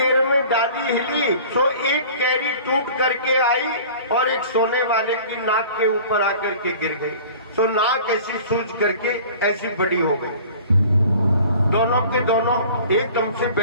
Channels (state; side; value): inverted; both; correlation -0.45